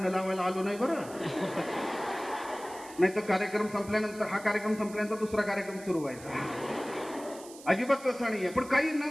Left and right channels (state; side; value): noise; right; hiss, 18 dB below the sound